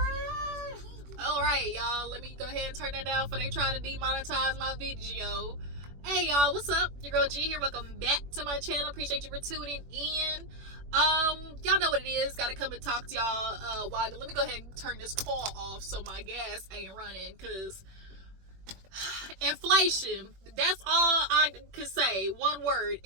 Alright, y'all. Let me go ahead and turn that down before they try to demonetize my video. Hey, y'all. What's up? Your girl G here. Welcome back to my channel. Appreciate you for tuning in. Y'all know what it is. Gotta come and talk to y'all. Let me go ahead and turn this call off so my gas ain't running, because inflation, that's all I can say. One word:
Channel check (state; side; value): late; left; 21 ms